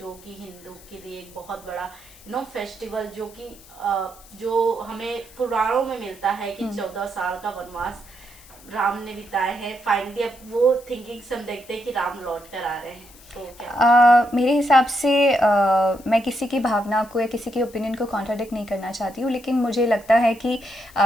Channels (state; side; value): noise; left; hiss, 23 dB below the sound